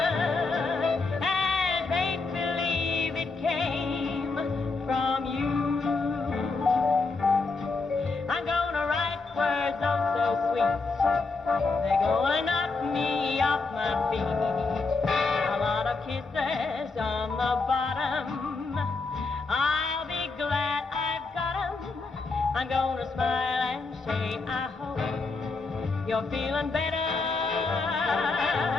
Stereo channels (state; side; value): quieter; right; 3.9 dB